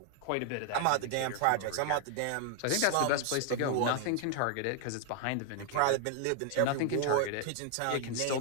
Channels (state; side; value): different; both; correlation 0.00